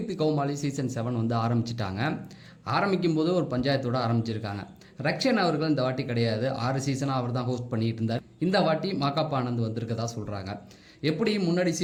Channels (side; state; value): both; identical; correlation 1.00